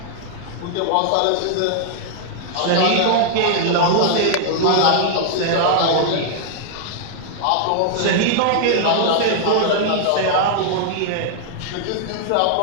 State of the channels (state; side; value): different; both; correlation -0.01